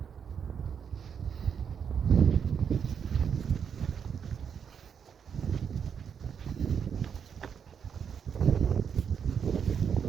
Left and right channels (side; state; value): left; quieter; 7.3 dB